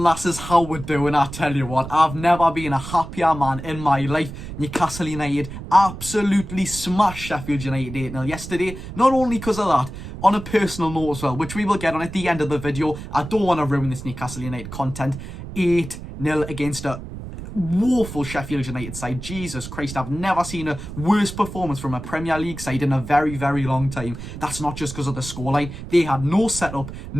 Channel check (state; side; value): noise; right; rumble, 10 dB below the sound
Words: lasses, how we're doing. I tell you what, I've never been a happier man in my life. Newcastle United absolutely smashed Sheffield United 8-0 yesterday. Not only because of that, on a personal note as well, which we will get on at the end of the video. I don't want to ruin this Newcastle United content. 8-0 against a woeful Sheffield United side. Jesus Christ, I've never seen a worse performance from a Premier League side in a very, very long time. That's not just because of the scoreline. They had no setup,